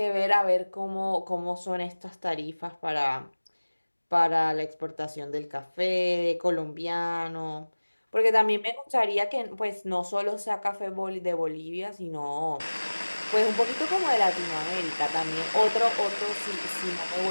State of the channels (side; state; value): both; inverted; correlation -1.00